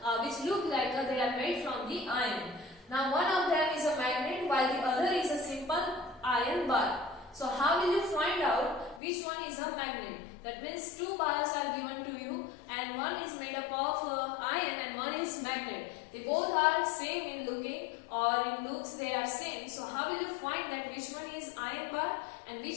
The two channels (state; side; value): drops out; right; at 9.0 s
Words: which look like they are made from the iron. Now one of them is a magnet while the other is a simple iron bar. So how will you find out which one is a magnet? That means two bars are given to you and one is made up of iron and one is magnet. They both are same in looking, or in looks they are same. So how will you find that which one is iron bar and